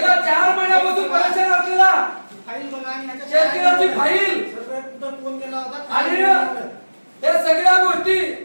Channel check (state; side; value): inverted; both; correlation -1.00